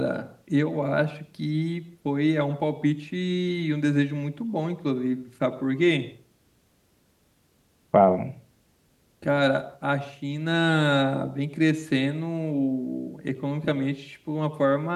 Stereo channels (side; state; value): both; identical; correlation 1.00